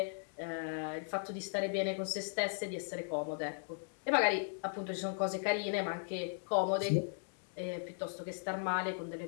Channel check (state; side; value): silent; right; digital silence